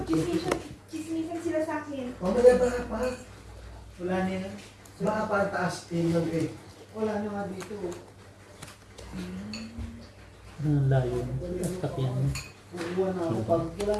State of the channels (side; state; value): both; identical; correlation 1.00